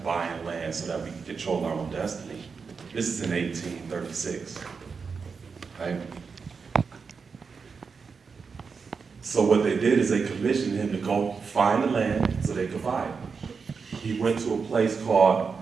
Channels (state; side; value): quieter; left; 5.3 dB